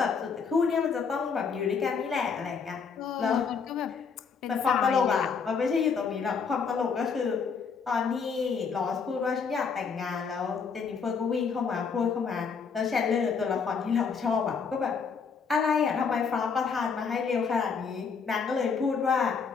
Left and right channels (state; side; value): quieter; right; 5.7 dB